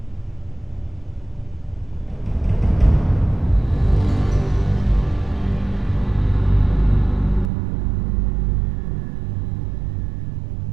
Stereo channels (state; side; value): drops out; left; at 7.5 s